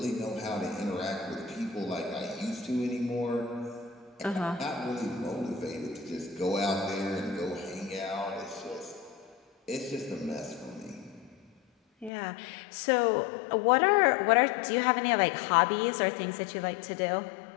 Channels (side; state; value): right; drops out; at 12.1 s